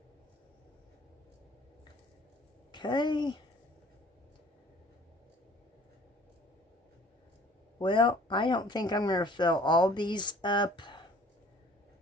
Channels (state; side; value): normal; both; correlation 0.52